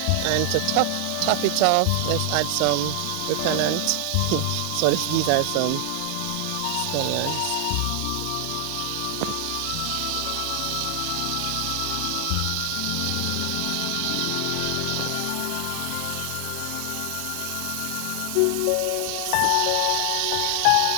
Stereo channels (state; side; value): different; both; correlation 0.00